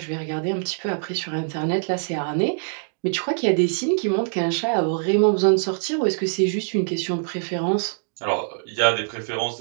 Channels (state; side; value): silent; left; digital silence